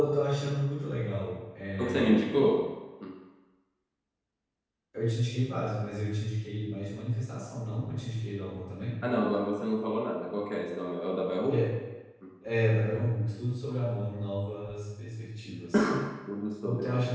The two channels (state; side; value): identical; both; correlation 1.00